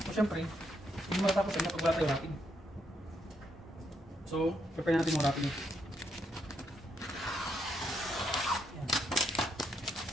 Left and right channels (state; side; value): normal; both; correlation 0.77